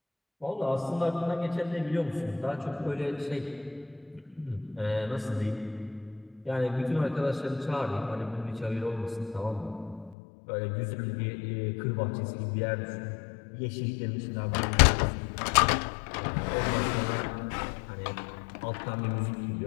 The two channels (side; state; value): right; drops out; at 10.2 s